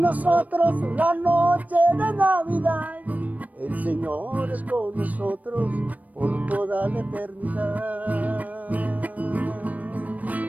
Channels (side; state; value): left; late; 0.074 ms